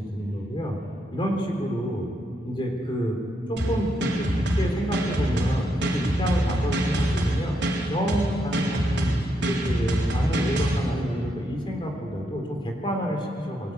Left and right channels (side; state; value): both; normal; correlation 0.79